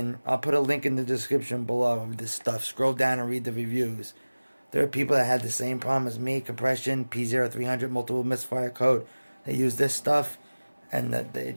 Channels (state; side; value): inverted; both; correlation -1.00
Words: I'll put a link in the description below of this stuff. Scroll down and read the reviews. There are people that had the same problem as me, compression, P0300, multiple misfire code. They use this stuff, and